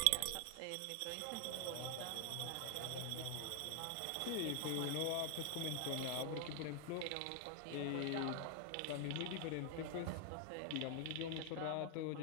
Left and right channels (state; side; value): different; both; correlation 0.00